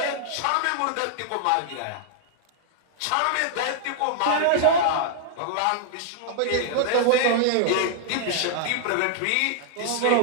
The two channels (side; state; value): both; different; correlation -0.01